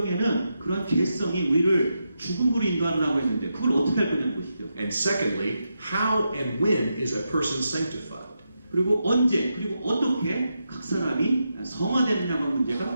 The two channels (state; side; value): inverted; both; correlation -0.86